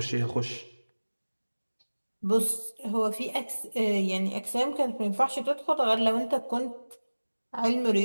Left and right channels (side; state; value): both; inverted; correlation -1.00